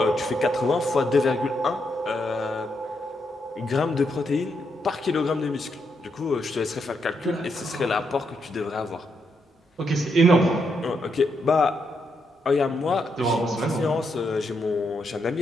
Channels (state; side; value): normal; both; correlation 0.80